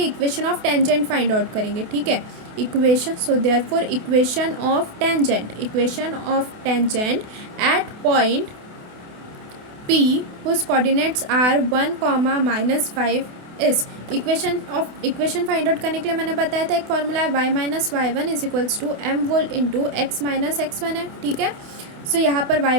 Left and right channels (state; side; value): late; left; 28 ms